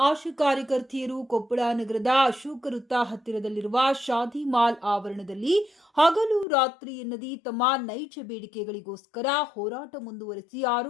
ಆಶಾ ಕಾರ್ಯಕರ್ತೆಯರು ಕೊಪ್ಪಳ ನಗರದ ಅಶೋಕ ವೃತ್ತ ಹತ್ತಿರದಲ್ಲಿರುವ ಶಾದಿ ಮಾಲ್ ಆವರಣದಲ್ಲಿ ಹಗಲು ರಾತ್ರಿ ಎನ್ನದೇ ತಮ್ಮ ನೈಜ ಬೇಡಿಕೆಗಳಿಗೋಸ್ಕರ ಹೋರಾಟ ಮುಂದುವರೆಸಿ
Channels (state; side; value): drops out; right; at 6.5 s